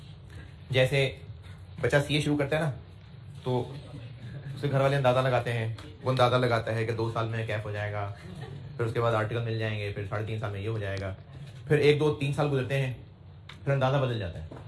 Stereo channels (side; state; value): both; identical; correlation 1.00